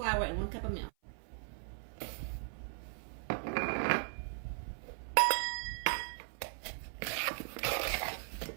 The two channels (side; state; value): left; silent; 52 dB below the other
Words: and 1 cup of milk.